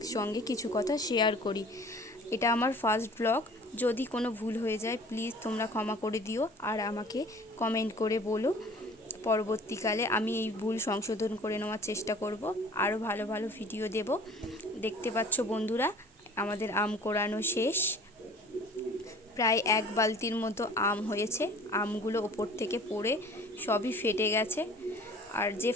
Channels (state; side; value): normal; both; correlation 0.48